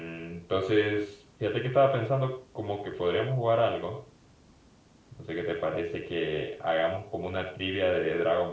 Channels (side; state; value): both; identical; correlation 1.00